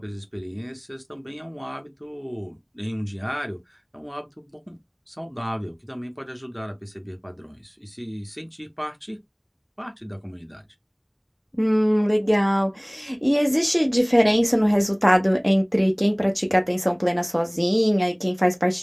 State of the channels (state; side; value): identical; both; correlation 1.00